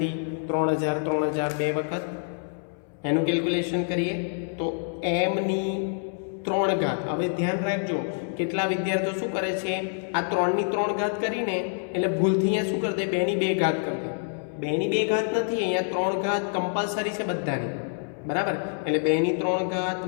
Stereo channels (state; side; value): silent; right; 60 dB below the other